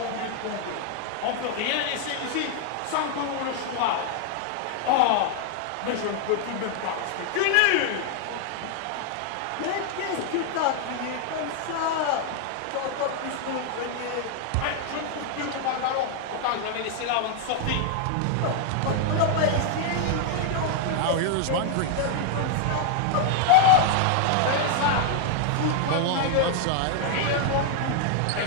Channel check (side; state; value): both; different; correlation 0.00